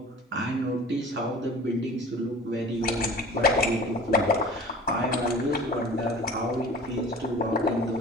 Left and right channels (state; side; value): normal; both; correlation 0.41